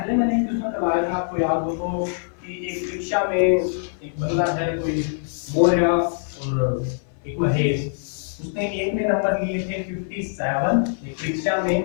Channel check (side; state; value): right; silent; 60 dB below the other